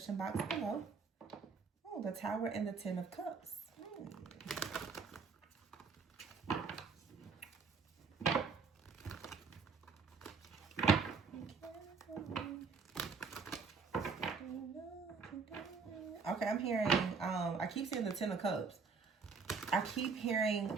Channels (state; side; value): quieter; left; 5.1 dB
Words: box below. Oh, the Tower and the Ten of Cups. Okay, I'm hearing, I keep seeing the Ten of Cups. I keep hearing,